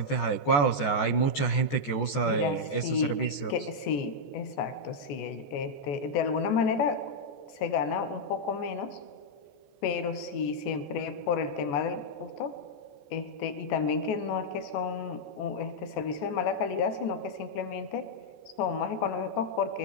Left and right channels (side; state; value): right; late; 14 ms